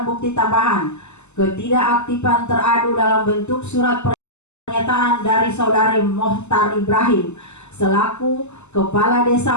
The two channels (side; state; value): right; late; 0.83 ms